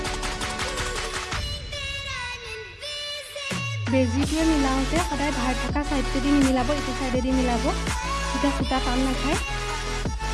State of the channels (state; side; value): identical; both; correlation 1.00